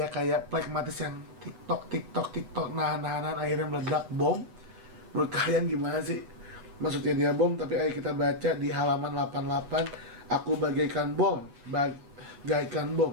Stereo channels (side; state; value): left; late; 8.2 ms